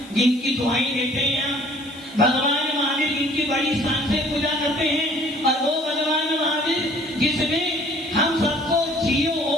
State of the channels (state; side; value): noise; left; hiss, 24 dB below the sound